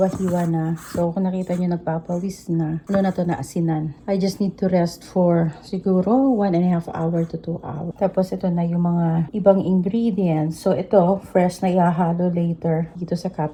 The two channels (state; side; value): identical; both; correlation 1.00